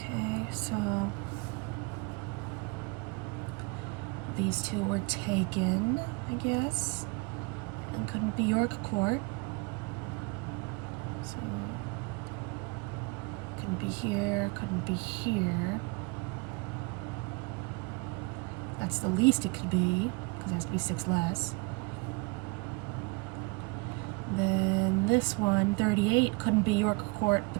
so these 2 were taken, I guess, and couldn't be York Court. So couldn't be here, couldn't be here. That's the least it could be, because it has to be 6 less. Then this one, 38, couldn't be York Court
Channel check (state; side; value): quieter; left; 28.7 dB